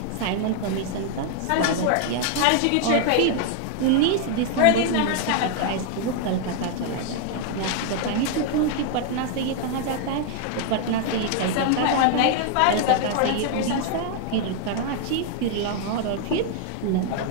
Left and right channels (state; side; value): different; both; correlation 0.00